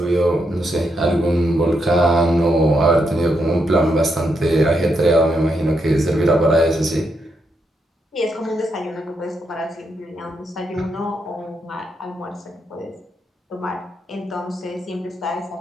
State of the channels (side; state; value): both; normal; correlation 0.80